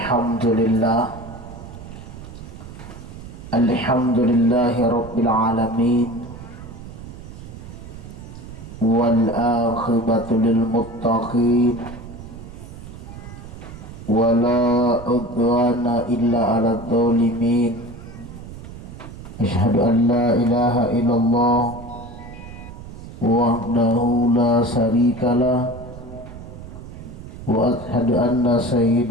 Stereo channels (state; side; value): noise; right; rumble, 14 dB below the sound